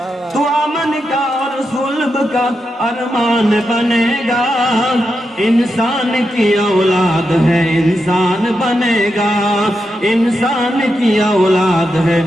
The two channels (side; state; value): both; normal; correlation 0.86